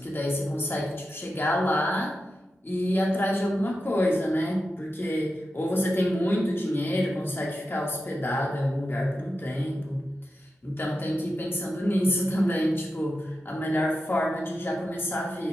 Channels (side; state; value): both; normal; correlation 0.90